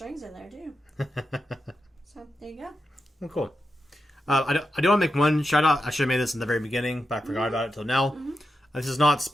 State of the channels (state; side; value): normal; both; correlation 0.88